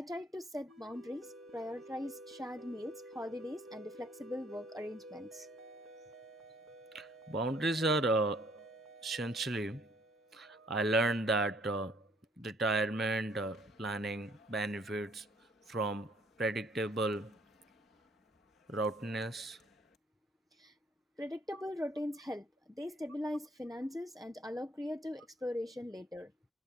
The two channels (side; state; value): both; normal; correlation 0.63